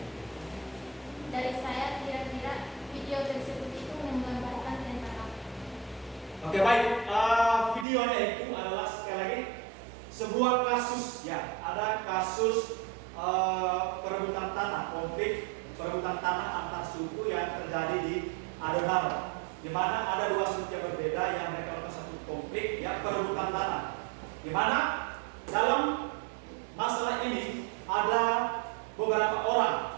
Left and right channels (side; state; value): left; drops out; at 7.9 s